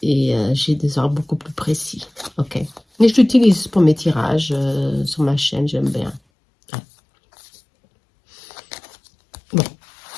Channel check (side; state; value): right; drops out; at 6.2 s